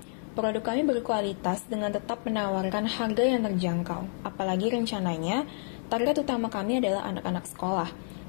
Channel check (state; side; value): silent; right; digital silence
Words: Produk kami berkualitas dengan tetap menawarkan harga yang terjangkau. Apalagi rencananya, target utama kami adalah anak-anak sekolah.